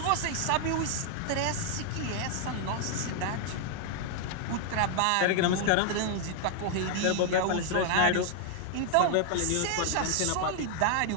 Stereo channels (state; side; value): different; both; correlation 0.00